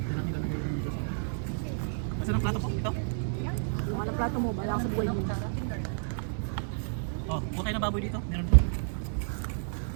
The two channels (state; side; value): silent; left; digital silence